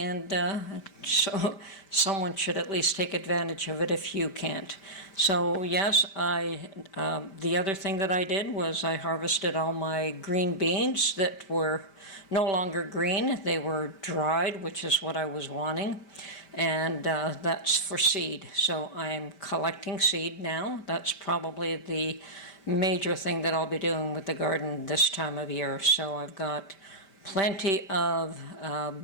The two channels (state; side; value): late; right; 5.1 ms